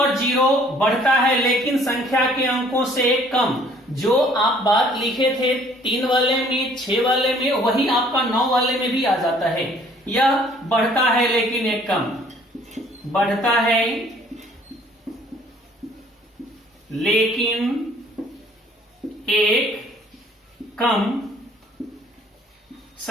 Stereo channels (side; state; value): both; normal; correlation 0.58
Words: 0 बढ़ता है लेकिन संख्या के अंकों से कम। जो आप बात लिखे थे 3 वाले में, 6 वाले में, वही आपका 9 वाले में भी आ जाता है। यह बढ़ता है लेकिन एक कम, बढ़ता है लेकिन एक कम